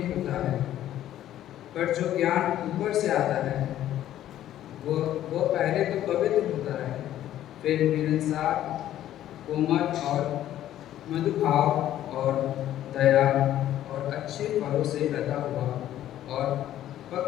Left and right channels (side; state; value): right; quieter; 12.4 dB